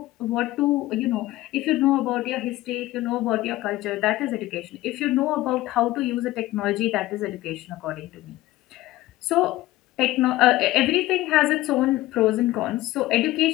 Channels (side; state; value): right; quieter; 17.0 dB